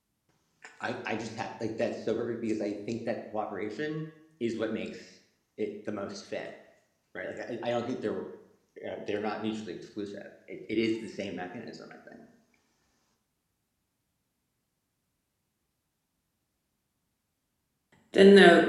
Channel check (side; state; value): both; identical; correlation 1.00